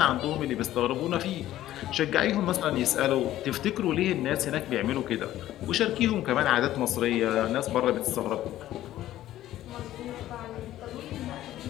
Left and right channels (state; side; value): quieter; right; 13.7 dB